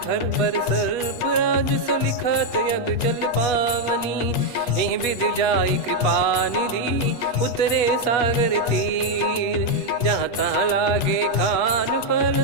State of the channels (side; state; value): right; late; 8.2 ms